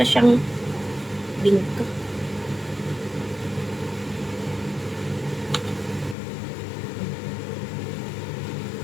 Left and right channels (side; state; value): right; drops out; at 6.2 s